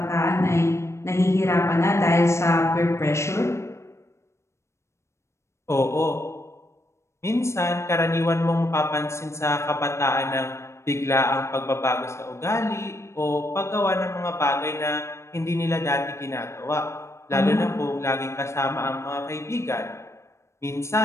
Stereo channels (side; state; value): right; late; 0.13 ms